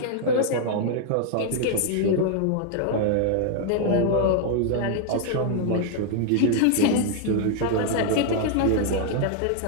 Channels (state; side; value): different; both; correlation -0.01